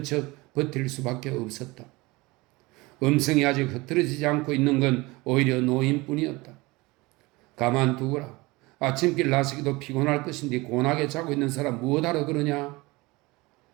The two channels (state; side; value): quieter; left; 22.7 dB